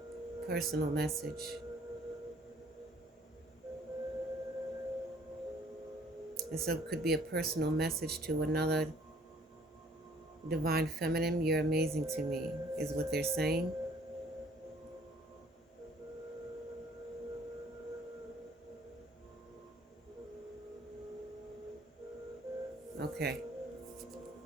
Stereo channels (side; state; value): both; normal; correlation 0.58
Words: personal message. And so it could be a personal message to another divine feminine. You're amazing to me, is what they're saying. Okay.